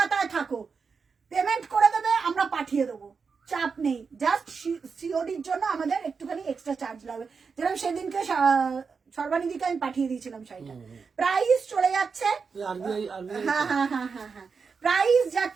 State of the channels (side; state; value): left; quieter; 5.4 dB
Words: থাকো পেমেন্ট করে দেবে, আমরা পাঠিয়ে দেবো, চাপ নেই। জাস্ট সিওডির জন্য আমাদের একটুখানি এক্সট্রা চার্জ লাগবে, যেরকম সেদিনকে সর্বানিধিকে আমি পাঠিয়ে দিয়েছিলাম শাড়িটা। প্রাইস চলে যাচ্ছে, হ্যাঁ হ্যাঁ হ্যাঁ হ্যাঁ হ্যাঁ, প্রাইস